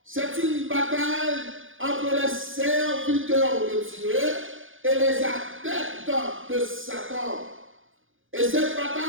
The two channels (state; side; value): late; left; 0.58 ms